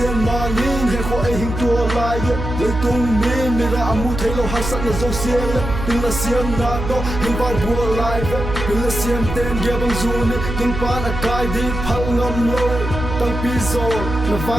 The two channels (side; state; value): right; noise; hum, 6 dB below the sound